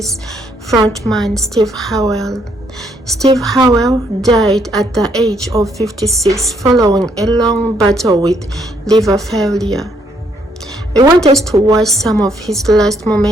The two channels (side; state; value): both; normal; correlation 0.71